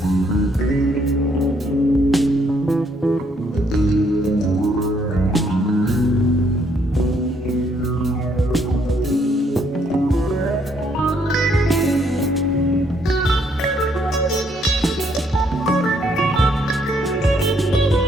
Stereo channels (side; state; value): both; normal; correlation 0.69